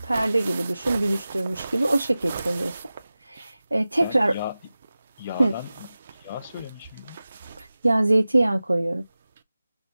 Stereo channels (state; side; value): inverted; both; correlation -0.96